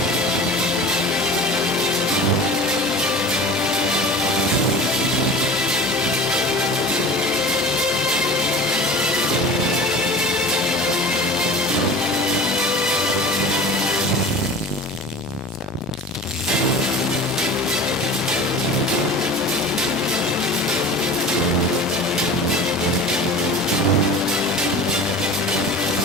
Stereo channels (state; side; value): normal; both; correlation 0.37